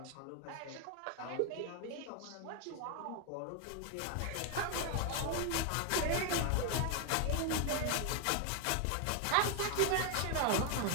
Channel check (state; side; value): different; both; correlation 0.00